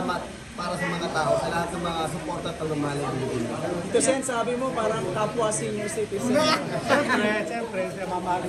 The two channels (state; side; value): identical; both; correlation 1.00